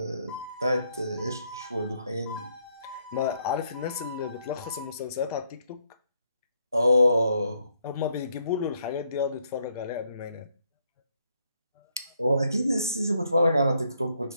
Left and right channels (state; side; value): inverted; both; correlation -0.73